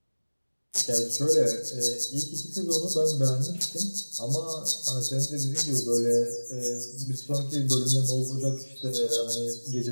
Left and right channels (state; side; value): inverted; both; correlation -1.00